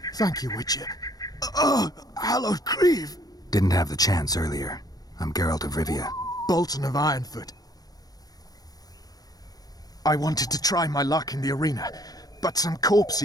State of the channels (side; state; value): right; late; 0.18 ms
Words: Thank you, Witcher. Oh, hallowed grieve! Didn't have the chance earlier. I'm Geralt of Rivia. Bolton of Ironfoot. I wanted to try my luck in the arena, but some